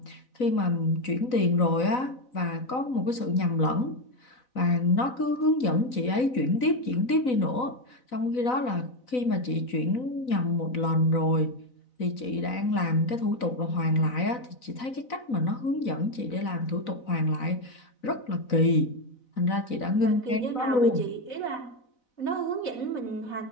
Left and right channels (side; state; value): right; late; 4.0 ms